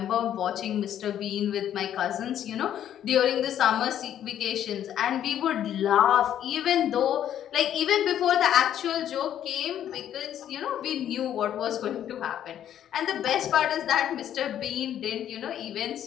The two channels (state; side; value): quieter; right; 10.6 dB